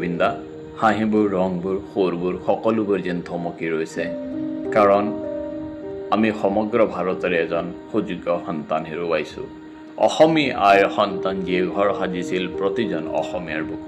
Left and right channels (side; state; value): both; identical; correlation 1.00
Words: হাঁহিবোৰ ৰংবোৰ সুৰবোৰ সকলোবোৰ যেন থমকি ৰৈছে কাৰণ আমি সমগ্ৰ ভাৰতৰে এজন সুযোগ্য সন্তান হেৰুৱাইছোঁ অসমীয়া আইৰ সন্তান যিয়ে ঘৰ সাজিছিল প্ৰতিজন অসমীয়াৰ